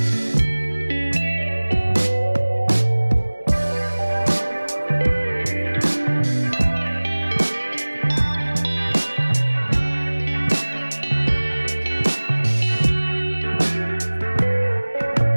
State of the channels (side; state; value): both; inverted; correlation -1.00